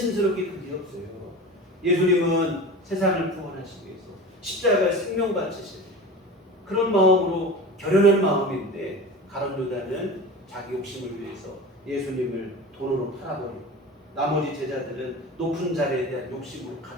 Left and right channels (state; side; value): normal; both; correlation 0.33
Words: 그게 없어요. 예수님은 세상을 구원하시기 위해서 십자가에 생명 바치시는 그런 마음으로 결연한 마음인데 가룟 유다는 자기 욕심을 위해서 예수님을 돈으로 팔아버리고 나머지 제자들은 높은 자리에 대한 욕심으로